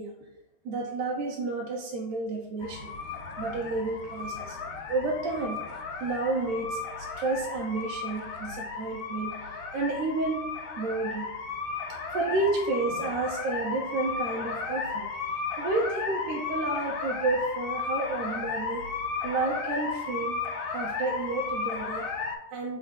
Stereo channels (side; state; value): left; late; 13 ms